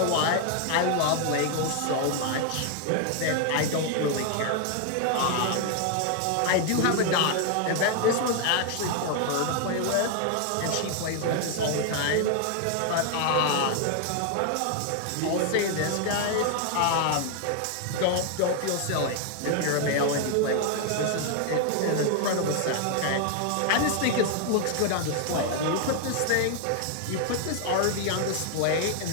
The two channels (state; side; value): different; both; correlation 0.00